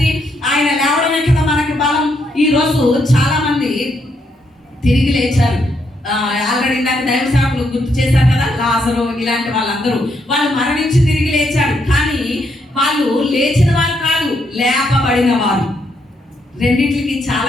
ఆయన లేవడమే కదా మనకి బలం. ఈ రోజు చాలా మంది తిరిగి లేచారు. ఆల్రెడీ ఇందాక దైవ సేవకులు గుర్తు చేశారు కదా, లాజరు ఇలాంటి వాళ్ళందరూ వాళ్ళు మరణించి తిరిగి లేచారు. కానీ వాళ్ళు లేచిన వారు కాదు, లేపబడిన వారు. రెండింటికి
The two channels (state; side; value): normal; both; correlation 0.77